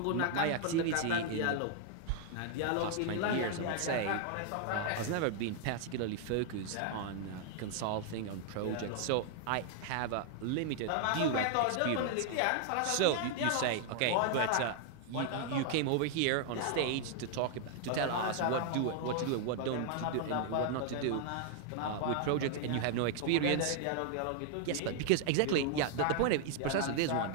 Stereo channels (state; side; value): different; both; correlation 0.00